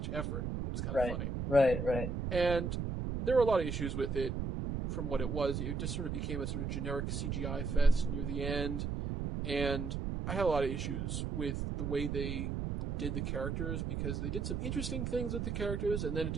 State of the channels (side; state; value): right; noise; rumble, 2 dB below the sound